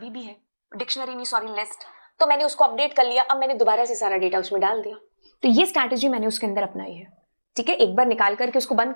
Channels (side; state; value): both; inverted; correlation -1.00